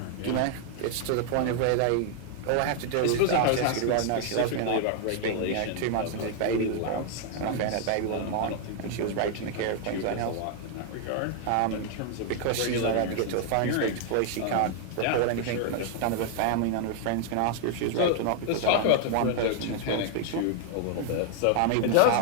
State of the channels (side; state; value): both; different; correlation 0.00